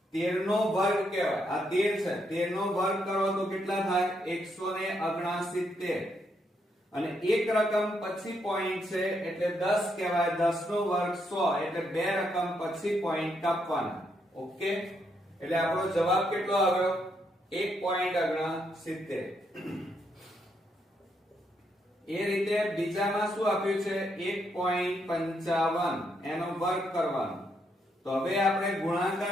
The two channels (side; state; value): both; normal; correlation 0.77